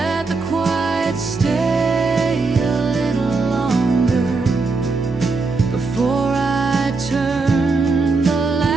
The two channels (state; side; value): quieter; left; 4.0 dB